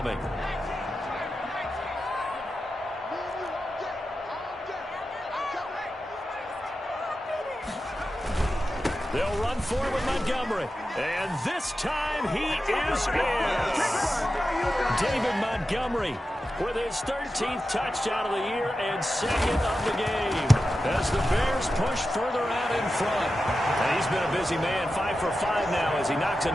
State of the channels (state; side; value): normal; both; correlation 0.92